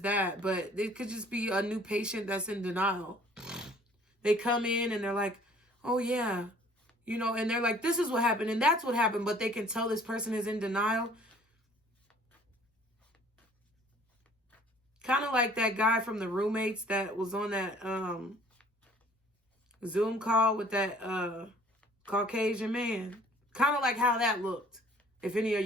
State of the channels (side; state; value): both; normal; correlation 0.54